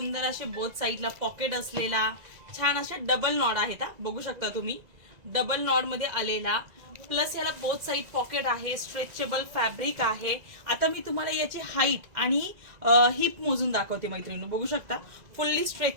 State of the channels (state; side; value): late; left; 2.0 ms